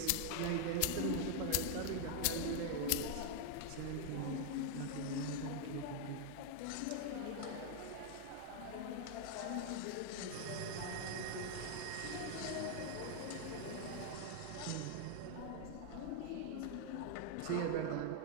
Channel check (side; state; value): both; different; correlation 0.00